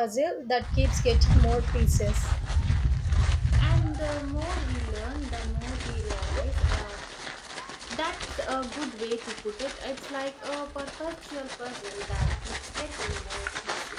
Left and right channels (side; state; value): both; identical; correlation 1.00